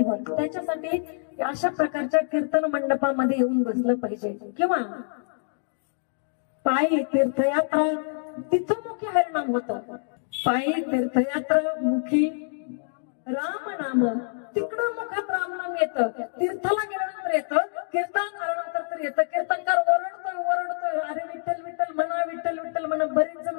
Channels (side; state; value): right; silent; digital silence